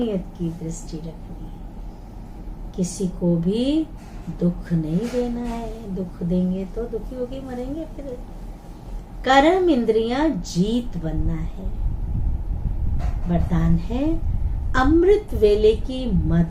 की दृष्टि रखनी है। किसी को भी दुख नहीं देना है, दुख देंगे तो दुखी होके मरेंगे फिर। कर्म इंद्रियां जीत बनना है। वरदान है, अमृत वेले की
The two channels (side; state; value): both; identical; correlation 1.00